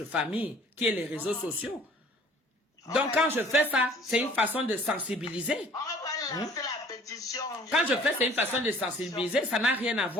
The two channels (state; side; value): normal; both; correlation 0.53